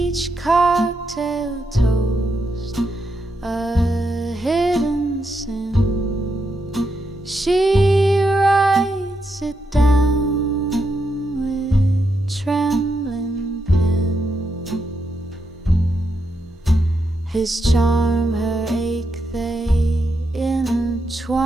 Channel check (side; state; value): both; normal; correlation 0.82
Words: cocktail toast a hidden sin. She writes it down with trembling pen. His charm, her ache, they